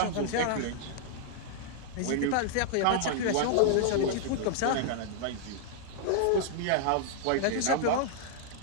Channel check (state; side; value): different; both; correlation -0.01